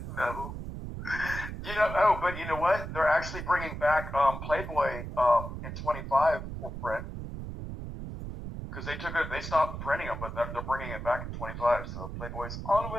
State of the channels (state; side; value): noise; right; rumble, 7 dB below the sound